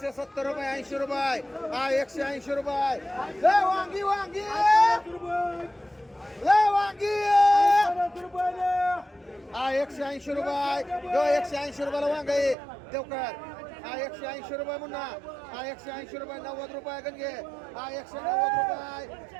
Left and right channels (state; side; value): drops out; left; at 12.6 s